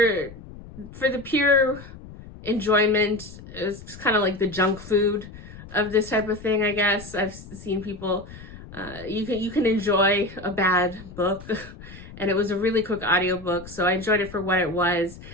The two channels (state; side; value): noise; left; rumble, 16 dB below the sound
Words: the pure enjoyment, it's kind of like the junk food of this type of thing, I guess. I've seen people, you can enjoy a bad book. And it was a really quick audiobook, so I enjoyed it for what it was.